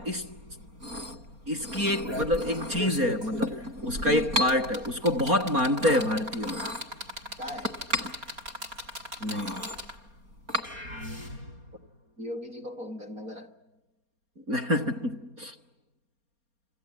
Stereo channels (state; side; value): late; left; 4.3 ms